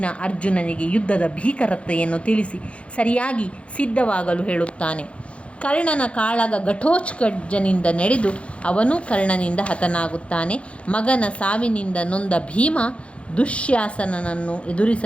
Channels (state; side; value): late; right; 0.061 ms